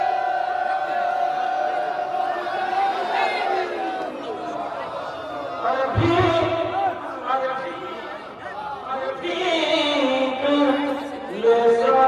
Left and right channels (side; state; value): both; identical; correlation 1.00